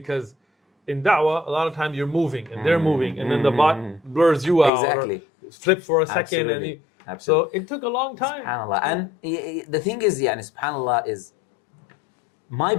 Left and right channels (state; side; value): drops out; right; at 4.7 s